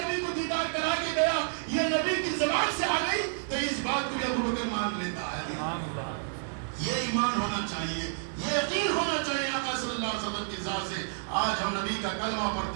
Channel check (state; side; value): silent; left; digital silence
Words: کو دیدار کرا کے گیا, یہ نبی کی زبان سے آ گئی تو اس بات کو بھی ابوبکر مان لیتا ہے. سبحان اللہ. یہ ایمان ہونا چاہیے. یہ یقین ہونا چاہیے آقا صلی اللہ علیہ وسلم کی ذات سے. آج ہم نبی کا کلمہ